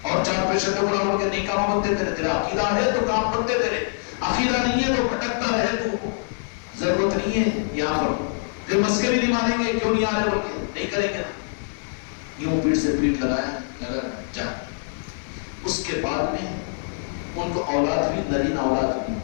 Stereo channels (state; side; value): silent; right; digital silence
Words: اور 4 پیسے کے بڑا کے نہیں کام بنتے تیرے تیرا عقیدہ ہے تو کام بنتے تیرے عقیدہ نہیں ہے تو بھٹکتا رہے تو ضرورت نہیں ہے یہاں پر پھر مسکے بھی نہیں مانیں گے کیوں نہیں آ رہے بول کے نہیں کریں گے یوں پیٹ سے پیٹ لگایا لگا جا اس کے بعد میں ان کو اولاد بھی نرین اولاد بھی